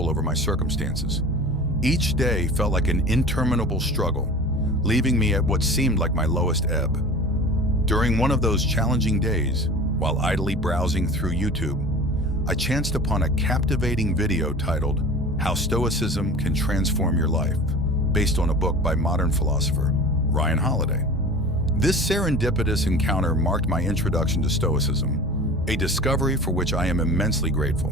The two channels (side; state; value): both; normal; correlation 0.38